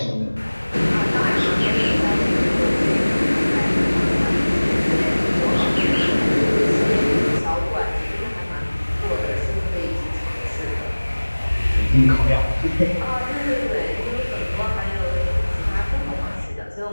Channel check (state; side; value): inverted; both; correlation -1.00